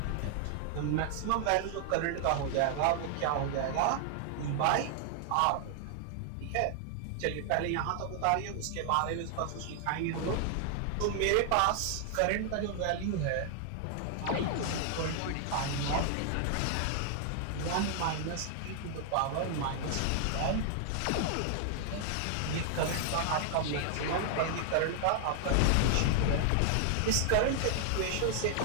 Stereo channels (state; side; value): different; both; correlation 0.00